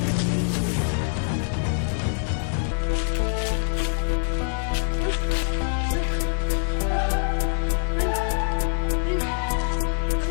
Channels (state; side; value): silent; right; 62 dB below the other